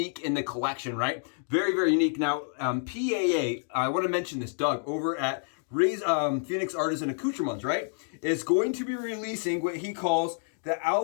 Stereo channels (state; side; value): silent; right; digital silence